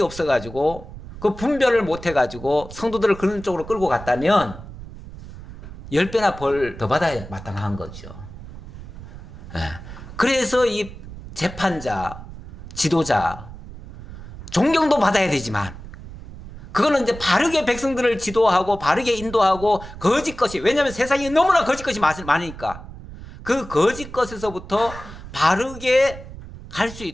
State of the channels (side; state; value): right; noise; rumble, 14 dB below the sound